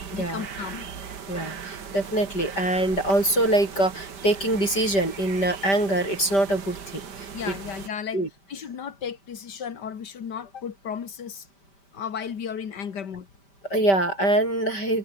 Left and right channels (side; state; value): right; late; 5.1 ms